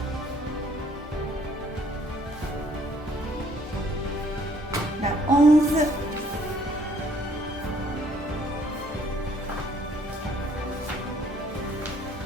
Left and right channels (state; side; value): normal; both; correlation 0.62